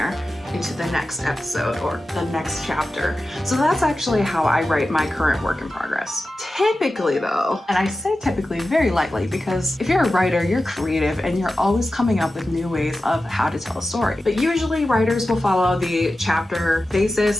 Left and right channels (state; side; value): normal; both; correlation 0.93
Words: into the next episode or the next chapter. So that's actually how I write my current work in progress. Typically though, and I say typically very lightly because if you're a writer, you're creative and you're always coming up with new ways of how to tell a story. But usually writers will follow the chapter